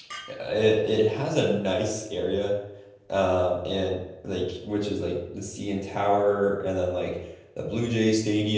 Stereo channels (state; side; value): identical; both; correlation 1.00